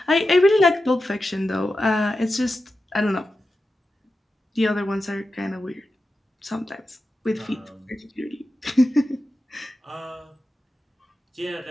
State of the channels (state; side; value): normal; both; correlation 0.91